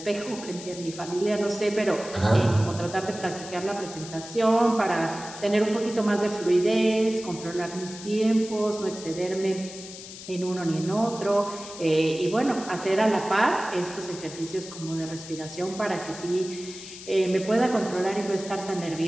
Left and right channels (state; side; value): noise; left; hiss, 13 dB below the sound